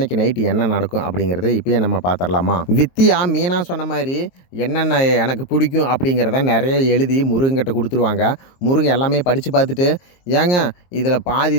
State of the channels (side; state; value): right; late; 23 ms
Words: நைட்டு என்ன நடக்கும் அப்படிங்கிறத இப்போயே நம்ம பார்த்துடலாமா? வித்தியா மீனா சொன்ன மாதிரி என்னென்ன எனக்கு பிடிக்கும் அப்படிங்கிறத நிறைய எழுதி முருகன்கிட்ட கொடுத்துருவாங்க. முருகன் எல்லாமே படித்து பார்த்துட்டு, ஏங்க இதில் பாதி